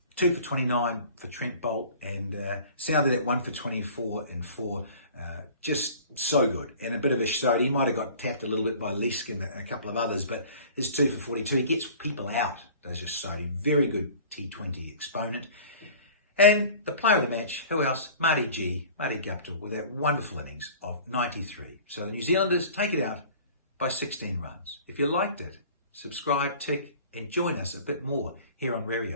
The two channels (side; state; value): both; inverted; correlation -0.45